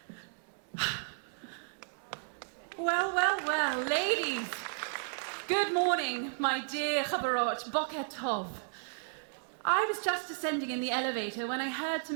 Well, ladies. Good morning, my dear chaverot, boker tov. I was just descending in the elevator when I heard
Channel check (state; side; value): silent; left; digital silence